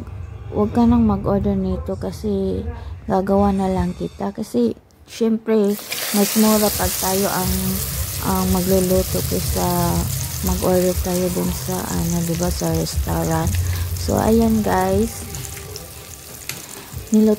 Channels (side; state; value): both; identical; correlation 1.00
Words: ka nang mag-order nito kasi gagawa na lang kita. Kasi, syempre, mas mura pag tayo ang magluluto kaysa mag-order tayo dun sa diba, sa restaurant. So ayan guys,